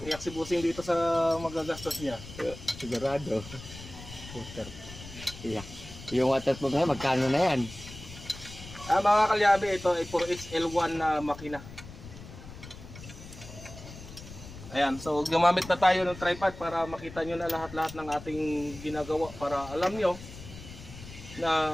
si Busing dito sa magagastos niya. Sigurado. Water. Yeah. Yung water pump na magkano na yan? Mga kalyabe, ito ay 4XL1 na makina. Ayan, so gumamit na tayo ng tripod para makita nyo na lahat-lahat ng ating ginagawa para alam nyo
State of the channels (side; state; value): left; noise; rumble, 15 dB below the sound